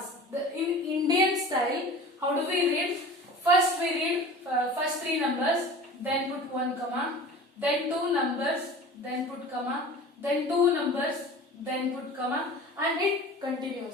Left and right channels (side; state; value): both; normal; correlation 0.39